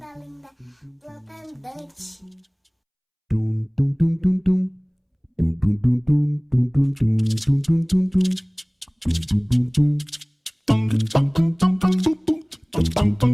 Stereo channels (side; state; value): both; identical; correlation 1.00